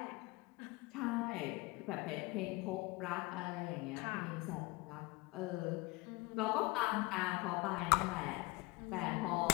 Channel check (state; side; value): quieter; right; 23.1 dB